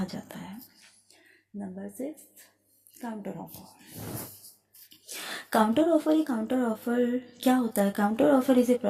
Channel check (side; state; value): both; identical; correlation 1.00